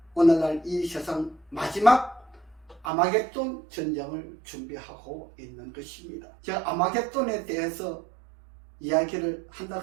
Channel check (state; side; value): drops out; left; at 2.9 s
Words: 오늘날 이 세상 마지막 아마겟돈 전쟁을 준비하고 있는 것입니다. 제가 아마겟돈에 대해서 이야기를 한다